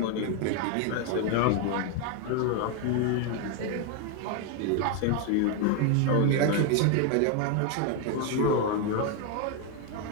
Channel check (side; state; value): both; different; correlation 0.01